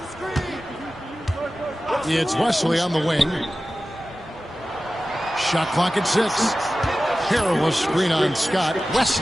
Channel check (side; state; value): both; normal; correlation 0.95